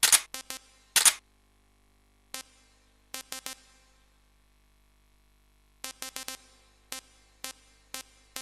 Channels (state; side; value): identical; both; correlation 1.00